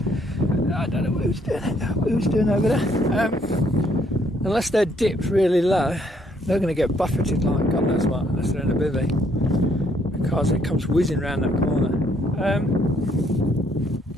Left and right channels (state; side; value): normal; both; correlation 0.69